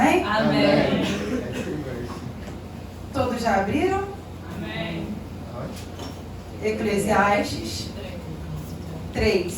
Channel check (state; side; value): identical; both; correlation 1.00